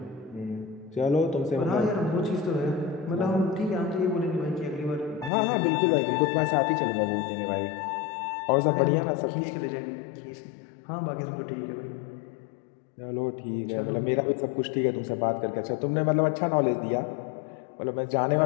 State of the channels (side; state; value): right; drops out; at 5.3 s